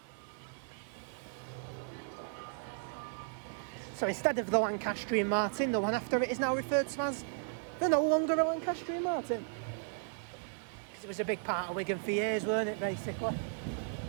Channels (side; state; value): left; silent; 54 dB below the other